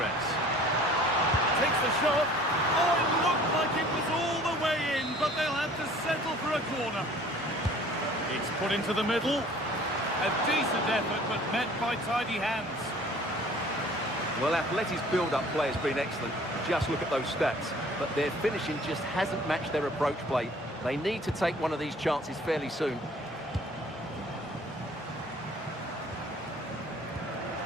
takes the shot. Oh, it looked like it was all the way in, but they'll have to settle for a corner. It's put into the middle. A decent effort, but met by tidy hands. Well, Atleti's build-up play has been excellent. Just look at those stats. But their finishing just hasn't matched their approach play. They need to take one of these chances fairly soon.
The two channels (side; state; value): both; normal; correlation 0.51